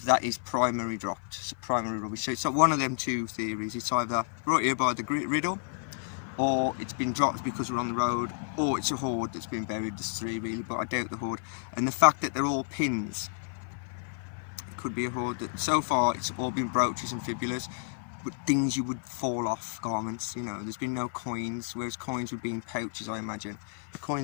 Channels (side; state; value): right; silent; 57 dB below the other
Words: that is primary dropped, it's primary rubbish. So it's one of them two theories. It's either right here by the riddle, or it's been dropped because we're on the road, or it's a hoard that's been buried. There's three really, but I doubt the hoard. And the fact that they're all pins, it could be a hoard. That so far it's all been brooches and fibulas, but things you would fall off, garments, you know. There's been no coins, whereas coins would be in pouches, I imagine. The